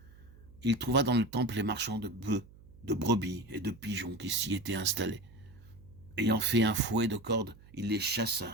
Il trouva dans le temple les marchands de bœufs, de brebis et de pigeons qui s'y étaient installés. Ayant fait un fouet de cordes, il les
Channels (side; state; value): right; noise; hum, 22 dB below the sound